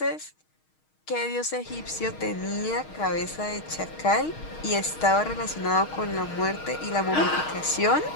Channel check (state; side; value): late; right; 6.4 ms